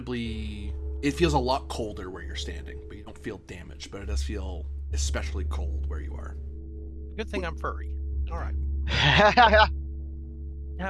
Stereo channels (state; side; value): identical; both; correlation 1.00